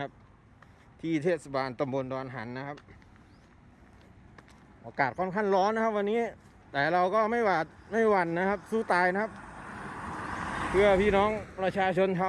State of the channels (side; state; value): both; identical; correlation 1.00